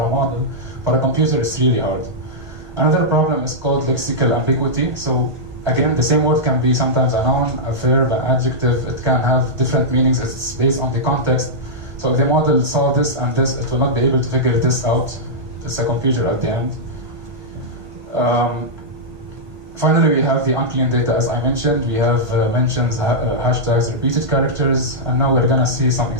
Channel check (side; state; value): left; late; 1.5 ms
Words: model, for a computer, it's really hard. Another problem is called lexical ambiguity. So again, the same word can be sometimes a noun, a verb, an adjective. It can have different meanings. It's based on the context. So if the model saw this and this, it will not be able to figure this out. It's a computer at the end. Finally, we have the unclean data, as I mentioned. We have mentions, hashtags, repeated characters, and now we're going to see some